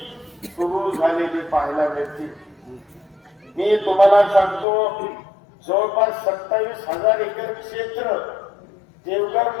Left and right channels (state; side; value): drops out; right; at 4.7 s